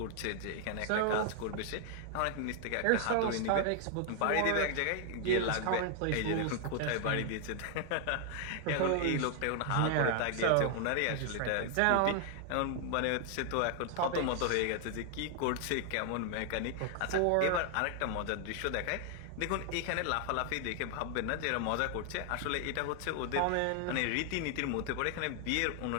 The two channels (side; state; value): both; different; correlation 0.00